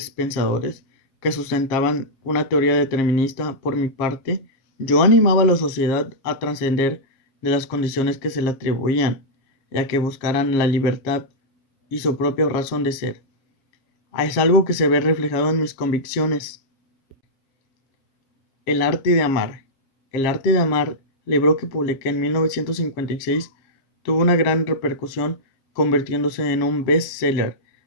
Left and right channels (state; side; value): late; right; 7.5 ms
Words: pensadores que sustentaban una teoría determinista, por mi parte, yo animaba a la sociedad a trascender de las condiciones que se le atribuían, y a que buscaran la libertad y su propia razón de ser. Es algo que se ve reflejado en mis convicciones. El arte de amar. El arte de amar, libro que publiqué en 1956, tuvo una gran repercusión, convirtiéndose en un best-seller,